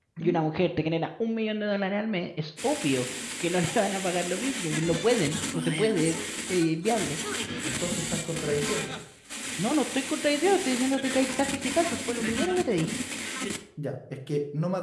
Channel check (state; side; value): identical; both; correlation 1.00